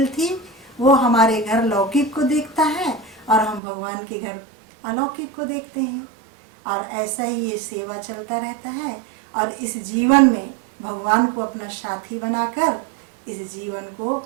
थी। वो हमारे घर लौकिक को देखता है और हम भगवान के घर अलौकिक को देखते हैं, और ऐसा ही ये सेवा चलता रहता है। और इस जीवन में भगवान को अपना साथी बनाकर इस जीवन को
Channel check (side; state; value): left; drops out; at 3.6 s